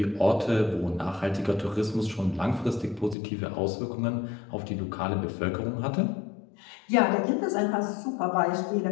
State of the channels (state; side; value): drops out; right; at 3.2 s